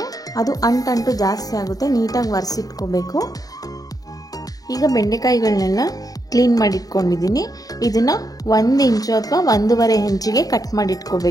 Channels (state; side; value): late; right; 0.18 ms